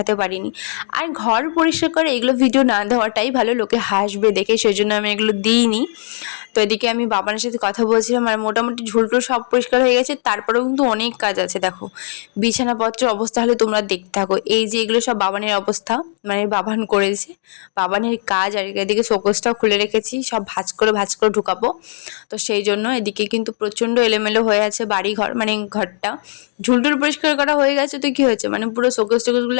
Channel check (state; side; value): silent; right; digital silence